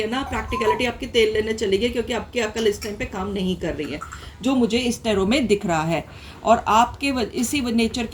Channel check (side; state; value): both; identical; correlation 1.00